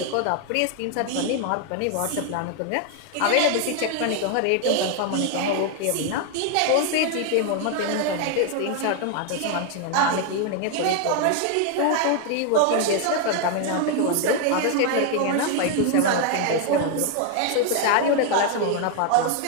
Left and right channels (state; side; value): different; both; correlation 0.01